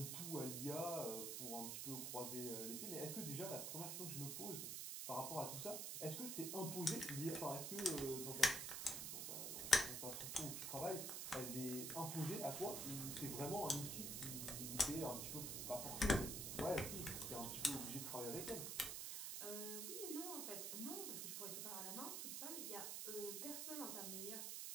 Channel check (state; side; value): noise; right; hiss, 2 dB below the sound